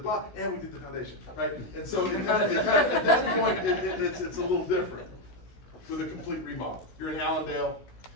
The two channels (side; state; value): right; late; 16 ms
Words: and we did the foundation, right? And so it kind of at that point, it's a little different with a complete remodel. You're in Allendale,